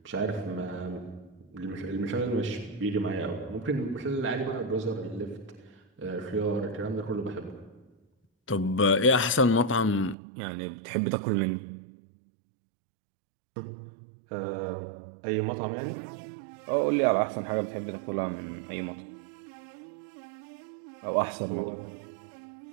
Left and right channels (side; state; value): left; drops out; at 10.2 s